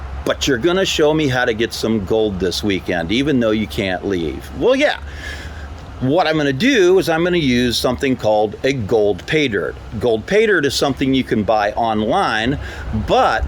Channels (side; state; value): both; identical; correlation 1.00